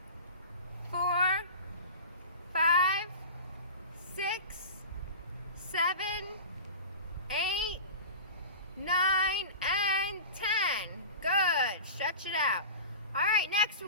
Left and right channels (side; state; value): both; inverted; correlation -0.32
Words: 4, 5, 6, 7, 8, 9, and 10. Good. Stretch it out. All right, next we're